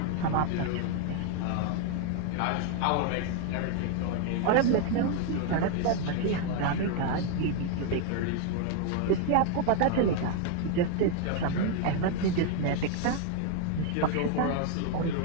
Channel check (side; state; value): both; different; correlation 0.00